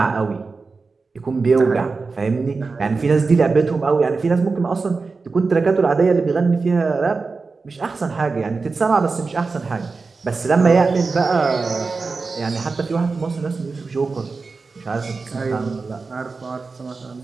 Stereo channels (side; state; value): left; quieter; 4.2 dB